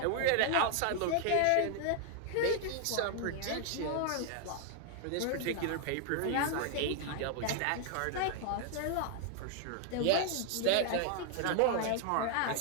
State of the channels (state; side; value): different; both; correlation 0.00